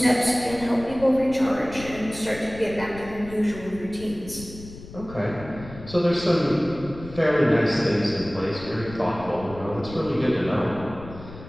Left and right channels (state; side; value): noise; left; rumble, 15 dB below the sound